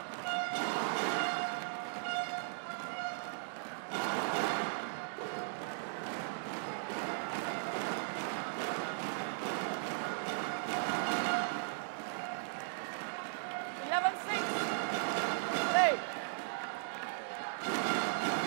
Set the tone. See if Duke will continue what he did at the end of the second set, where he was actually playing the net back after Rumbaka, because Rumbaka was kind of looking for it. See if he has the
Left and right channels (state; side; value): silent; left; digital silence